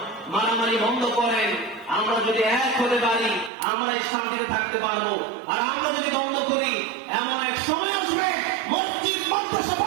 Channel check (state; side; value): drops out; left; at 3.5 s